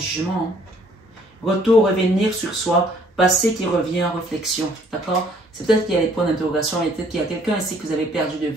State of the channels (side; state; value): both; normal; correlation 0.61